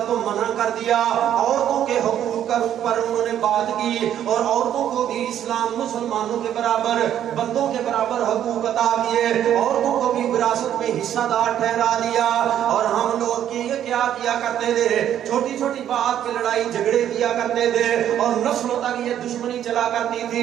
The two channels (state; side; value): quieter; left; 10.6 dB